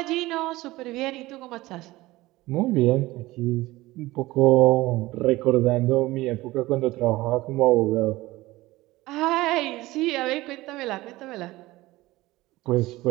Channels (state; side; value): quieter; left; 18.8 dB